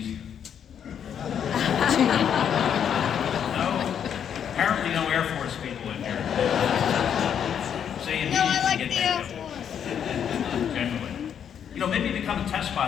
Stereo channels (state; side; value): quieter; right; 8.5 dB